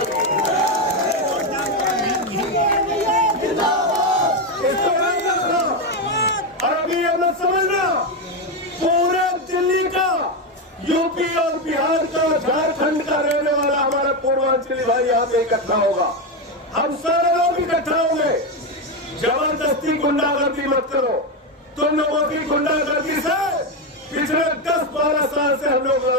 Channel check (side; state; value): both; normal; correlation 0.10